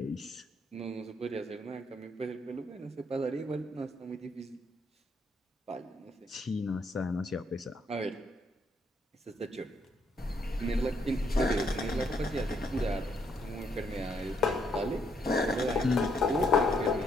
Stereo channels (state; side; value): normal; both; correlation 0.72